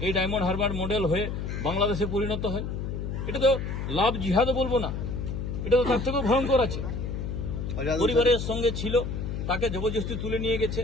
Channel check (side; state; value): left; noise; hum, 4 dB below the sound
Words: এই ডায়মন্ড হারবার মডেল হয়ে বাংলাদেশে পরিণত হয়। এটা তো লাভ জিহাদও বলবো না, এটা তো তার থেকেও ভয়ঙ্কর আছে। পরিবারের সঙ্গে ছিল, তাকে জবরদস্তি তুলে নিয়ে গেছে,